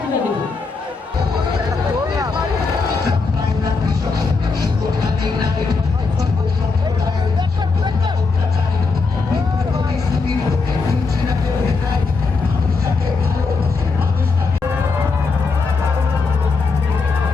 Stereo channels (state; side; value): quieter; right; 4.3 dB